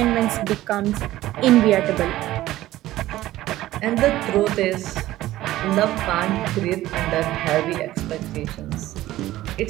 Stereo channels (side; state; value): left; quieter; 15.5 dB